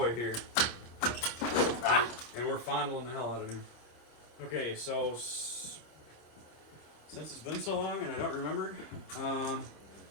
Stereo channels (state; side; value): late; right; 26 ms